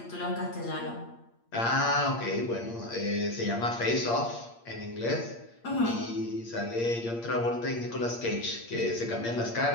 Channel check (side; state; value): right; late; 8.6 ms